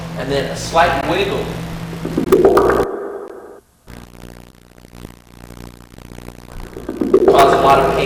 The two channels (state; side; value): identical; both; correlation 1.00